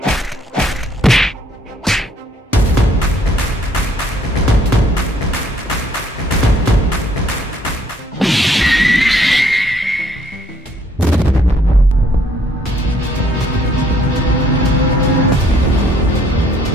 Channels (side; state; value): both; normal; correlation 0.65